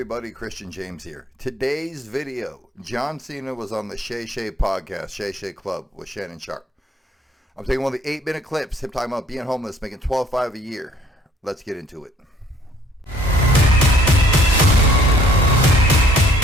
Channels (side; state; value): both; normal; correlation 0.60